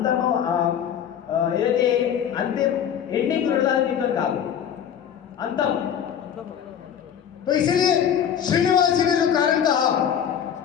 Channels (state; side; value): quieter; right; 8.9 dB